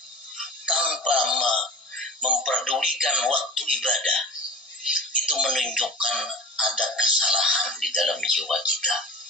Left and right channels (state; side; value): normal; both; correlation 0.34